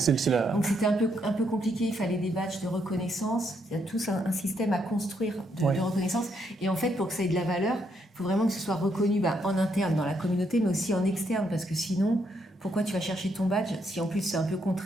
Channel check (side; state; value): both; normal; correlation 0.75